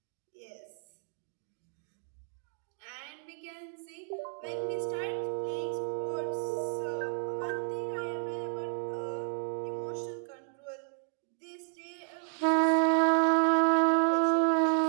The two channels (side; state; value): left; silent; 56 dB below the other